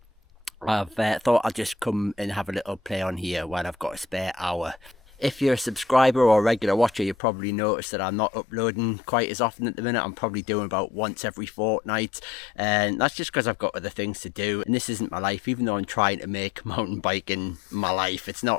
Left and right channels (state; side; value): drops out; right; at 7.2 s